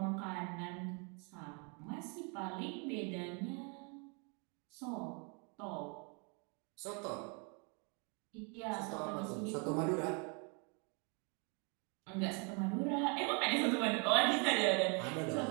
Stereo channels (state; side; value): quieter; left; 34.9 dB